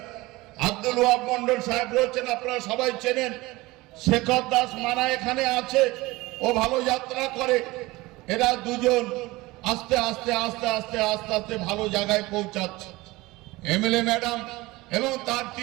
আব্দুল ওয়াহাব মন্ডল সাহেব রয়েছেন, আপনারা সবাই চেনেন। শেখর দাস মানা এখানে আছে, ও ভালো যাত্রা করে। এরা দুজন আস্তে আস্তে আস্তে আস্তে আস্তে আস্তে ভালো জায়গায় পৌঁছাচ্ছে। এমএলএ ম্যাডাম এবং তার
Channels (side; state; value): left; quieter; 20.7 dB